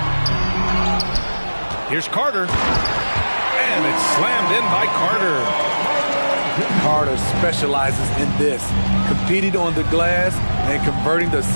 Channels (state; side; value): inverted; both; correlation -1.00